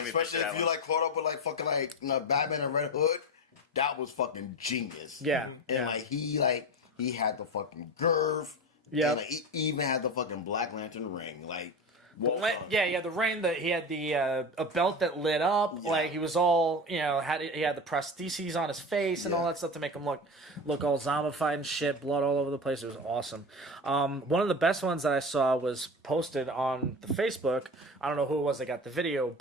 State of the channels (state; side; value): normal; both; correlation 0.26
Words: especially if you like caught up with like fucking like Batman and Red Hood. That was fucking genius. Yeah. And he had the fucking girth. Yeah. And he even had the fucking Black Lantern ring. Like, Yeah, the ring that he had a belt that lit up. Yeah. Like he was all he had the prostheses on his face and all that stuff to make him look all zombified and shit, blood all over the place. It was awesome. One of the best ones that I saw was posted on the Facebook. I don't know who it was that got the video,